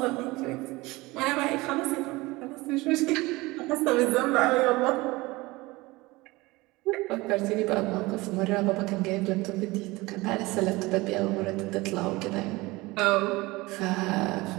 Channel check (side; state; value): left; quieter; 21.6 dB